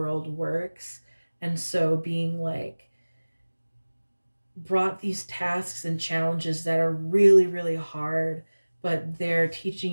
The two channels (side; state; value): both; inverted; correlation -1.00